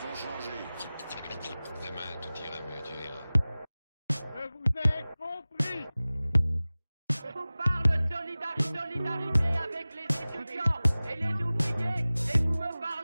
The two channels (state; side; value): inverted; both; correlation -0.98